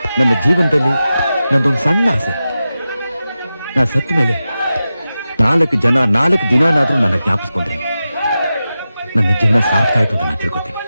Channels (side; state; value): both; inverted; correlation -0.93